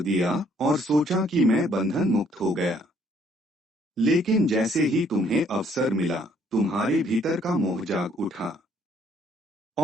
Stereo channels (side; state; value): both; normal; correlation 0.64